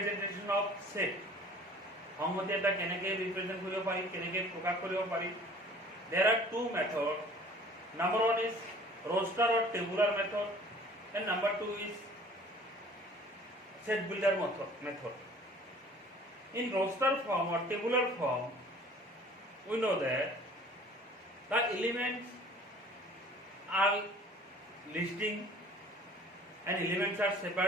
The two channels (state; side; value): normal; both; correlation 0.49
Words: of set সংহতি এটা কেনেকৈ ৰিপ্ৰেজেন্ট কৰিব পাৰি কেনেকৈ প্ৰকাশ কৰিব পাৰি there are two methods number one is roster or tabular method and number two is set builder method in roster form or tabular form we know that the elements are listing and elements are